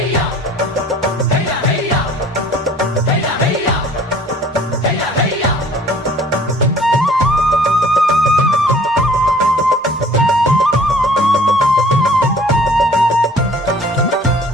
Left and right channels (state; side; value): normal; both; correlation 0.52